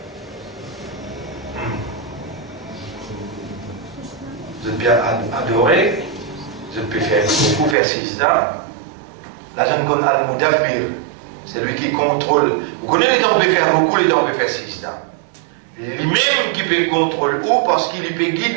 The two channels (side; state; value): left; drops out; at 7.8 s